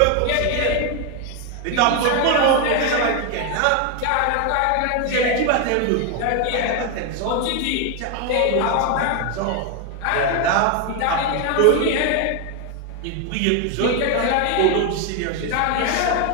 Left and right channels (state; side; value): different; both; correlation 0.01